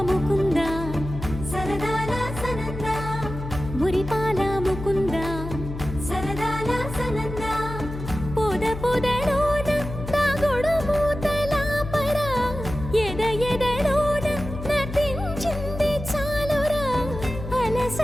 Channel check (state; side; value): noise; left; hum, 8 dB below the sound